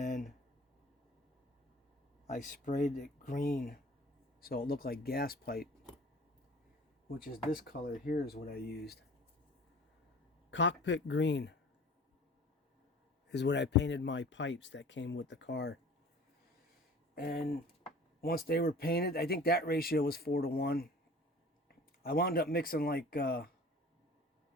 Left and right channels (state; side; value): normal; both; correlation 0.45